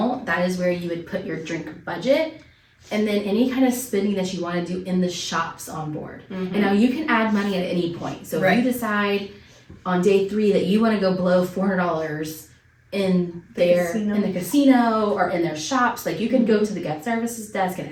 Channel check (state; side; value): identical; both; correlation 1.00